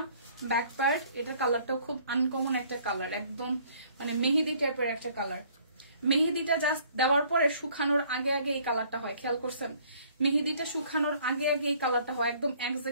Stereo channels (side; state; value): both; inverted; correlation -0.59